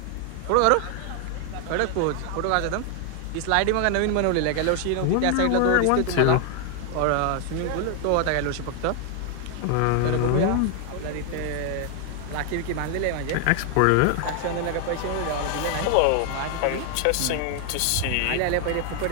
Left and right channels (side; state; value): both; different; correlation 0.00